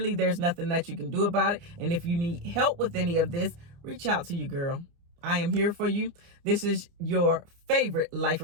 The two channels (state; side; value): late; left; 29 ms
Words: there's nothing that you can do about it. And if you need help with any of this, reach out to you, girl. I am here for you. This is your favorite life